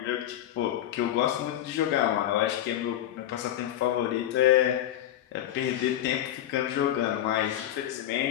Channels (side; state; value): right; quieter; 12.0 dB